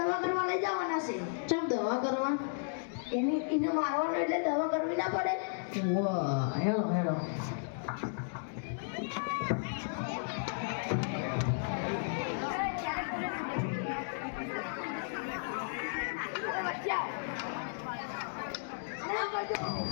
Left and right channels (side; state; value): right; silent; digital silence